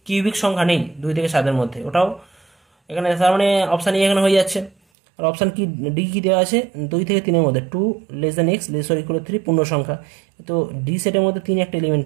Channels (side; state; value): left; drops out; at 4.8 s